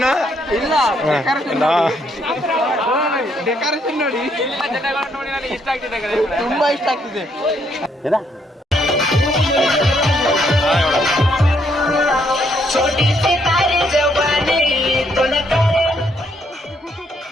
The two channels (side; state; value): both; normal; correlation 0.72